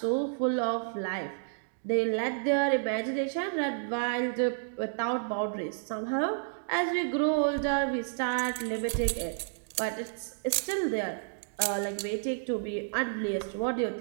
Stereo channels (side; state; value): left; silent; digital silence